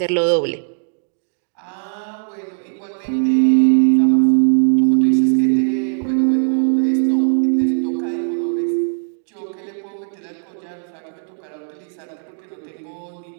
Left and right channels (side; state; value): left; silent; digital silence